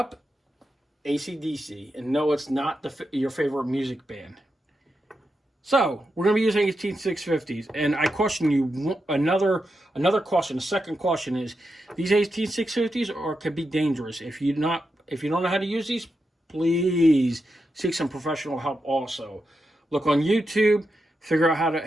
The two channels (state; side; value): normal; both; correlation 0.87